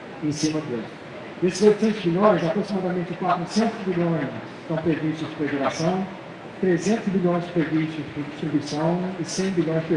em cima deles. Desses 800 bilhões, aproximadamente 400 bilhões estão previstos para geração, 300 bilhões previstos para distribuição e 100 bilhões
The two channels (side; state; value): both; identical; correlation 1.00